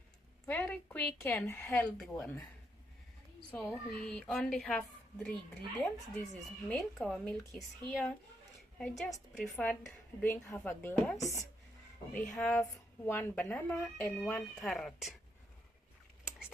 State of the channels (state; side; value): normal; both; correlation 0.78